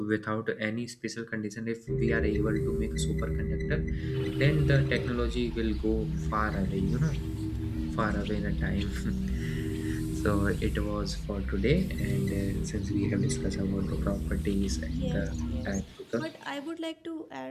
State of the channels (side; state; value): both; identical; correlation 1.00